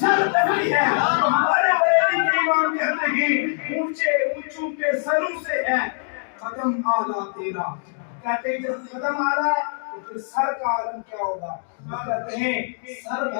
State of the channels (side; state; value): right; silent; digital silence